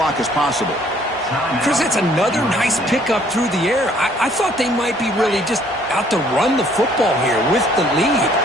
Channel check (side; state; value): both; normal; correlation 0.61